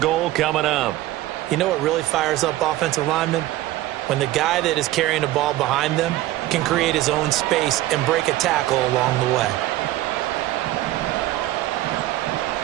goal coming up. You know what really fires up offensive linemen? When the guy that is carrying the ball behind them can create his own space and break a tackle along the way.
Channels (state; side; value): quieter; left; 15.8 dB